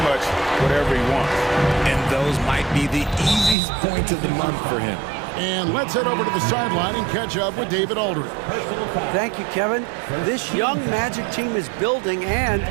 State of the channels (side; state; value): left; drops out; at 3.6 s